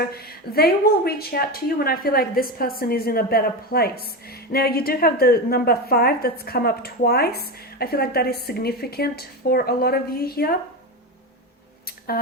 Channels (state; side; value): normal; both; correlation 0.19